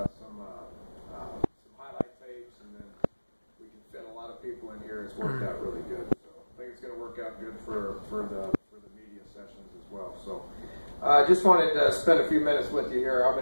some highlight tapes, and then we can fit a lot of people in here. It's worked out really good. So I think it's going to work out good for the media sessions as well. So I just wanted to spend a few minutes with you here. I'm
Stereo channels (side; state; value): both; inverted; correlation -1.00